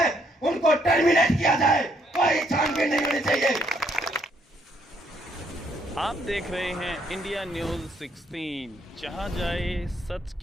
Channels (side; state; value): both; normal; correlation 0.70